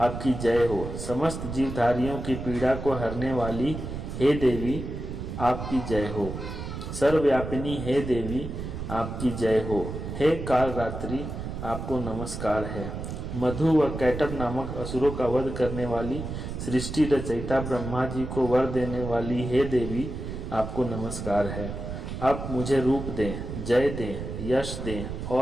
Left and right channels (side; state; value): right; noise; rumble, 6 dB below the sound